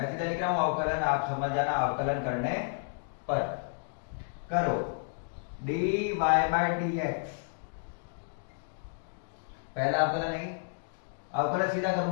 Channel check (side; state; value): right; silent; digital silence